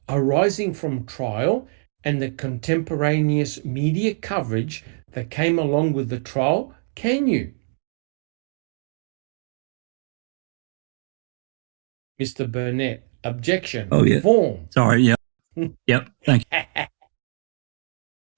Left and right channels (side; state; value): left; silent; 63 dB below the other